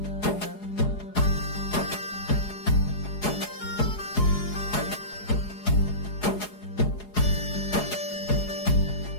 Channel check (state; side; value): late; right; 4.8 ms